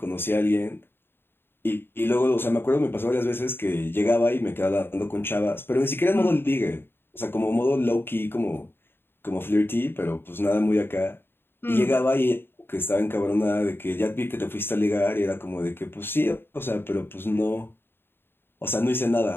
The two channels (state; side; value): late; right; 0.11 ms